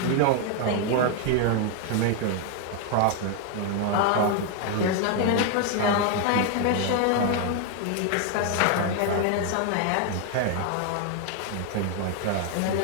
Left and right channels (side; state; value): both; different; correlation 0.00